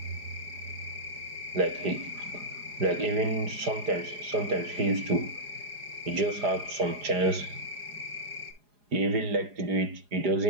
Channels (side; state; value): left; late; 4.8 ms